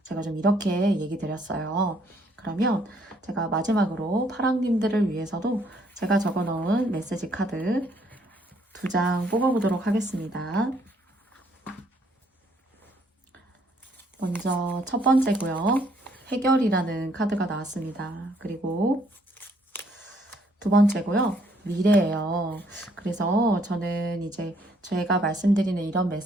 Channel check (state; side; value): normal; both; correlation 0.67